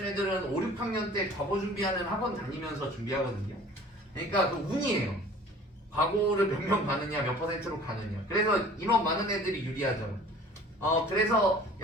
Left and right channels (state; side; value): normal; both; correlation 0.48